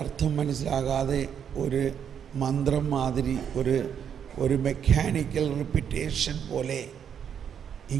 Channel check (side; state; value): left; quieter; 8.2 dB